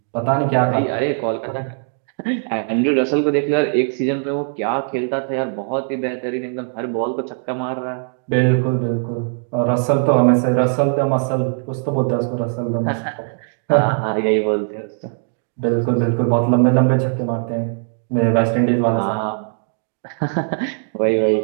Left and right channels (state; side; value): silent; left; 66 dB below the other